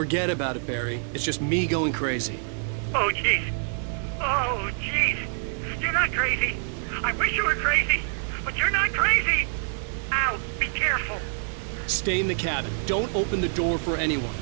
Forget about it, Barry. It's just me going crazy. Oh, jeez. Oh, jeez. You're not crazy. I wish you were crazy, but you're not crazy. Ow, be careful. Stay in the cabin. Don't open the door for anyone.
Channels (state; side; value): silent; left; digital silence